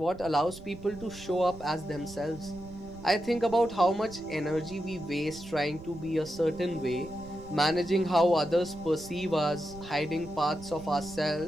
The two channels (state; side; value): noise; right; rumble, 16 dB below the sound